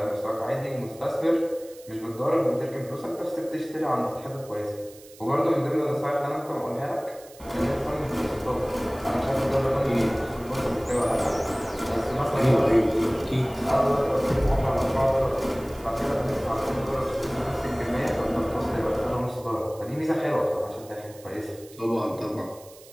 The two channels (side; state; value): right; noise; hiss, 22 dB below the sound